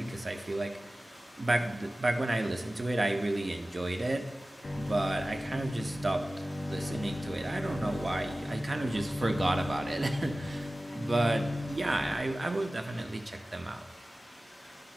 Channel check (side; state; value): both; normal; correlation 0.97